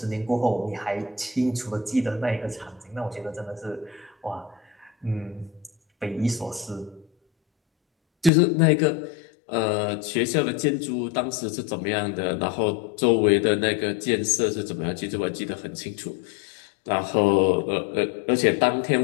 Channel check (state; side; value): drops out; right; at 8.3 s